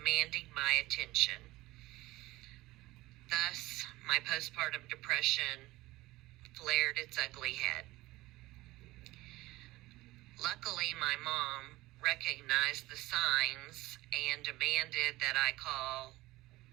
my attention. Thus, my postpartum depression flared its ugly head. Luckily, my mom recognized the signs and demanded that I call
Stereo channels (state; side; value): quieter; left; 18.9 dB